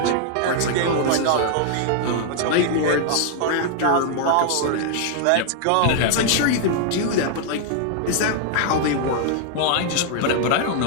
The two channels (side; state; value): both; different; correlation 0.00